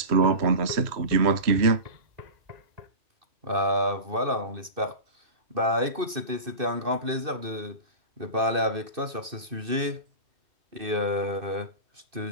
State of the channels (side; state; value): left; late; 2.6 ms